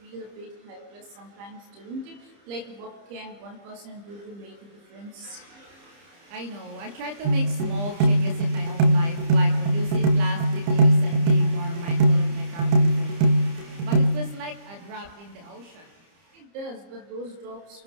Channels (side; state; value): left; late; 30 ms